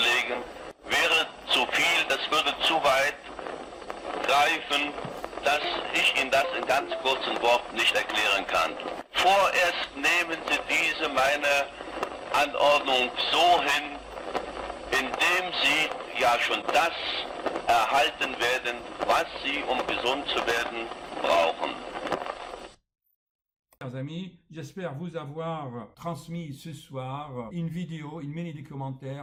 wäre zu viel, das würde zu weit greifen, dass ich Ihnen das in ganz kurzen Worten nicht erklären kann. Vorerst nehmen Sie diese meine Anordnung so hin, indem Sie ja schon das erhalten werden, was Sie, um gesund zu werden, brauchen. Chers amis, j'espère vous avoir transmis ce soir une vidéo, une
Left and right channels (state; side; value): identical; both; correlation 1.00